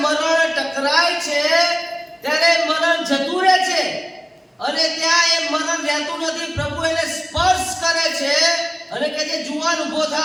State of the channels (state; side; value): identical; both; correlation 1.00